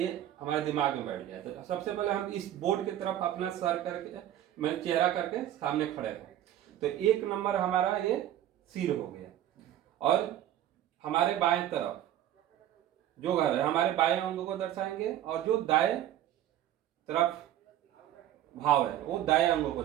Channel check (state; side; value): quieter; left; 12.1 dB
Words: हमारे दिमाग में बैठ गया। तो सबसे पहले हम इस बोर्ड की तरफ अपना सर करके मैं चेहरा करके सामने खड़े हैं। तो एक नंबर हमारा ये सिर हो गया और हमारे बाएं तरफ जो घर है हमारे बाएं अंगों को दर्शाएंगे और जो दाएं तरफ भाव है वो दाएं अंगों को